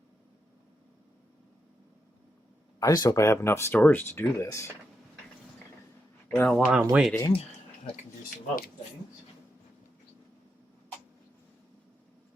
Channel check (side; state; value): both; normal; correlation 0.84